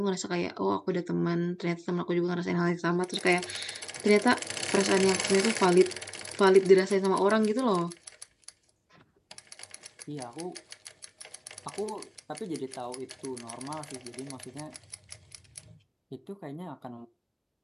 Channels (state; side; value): identical; both; correlation 1.00